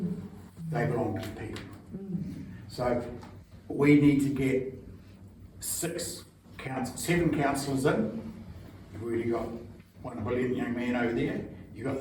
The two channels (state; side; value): identical; both; correlation 1.00